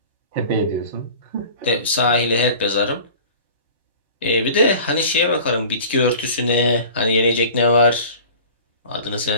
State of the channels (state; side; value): inverted; both; correlation -0.42